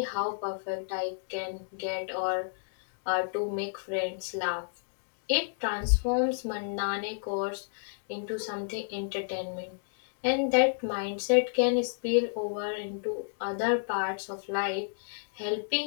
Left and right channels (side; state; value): right; silent; digital silence